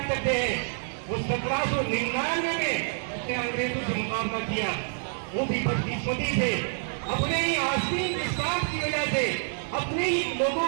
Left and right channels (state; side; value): silent; left; 60 dB below the other